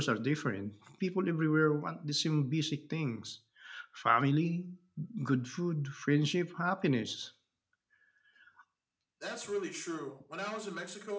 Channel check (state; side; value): identical; both; correlation 1.00